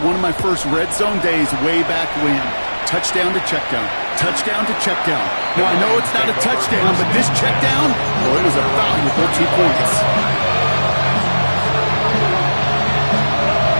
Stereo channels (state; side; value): inverted; both; correlation -1.00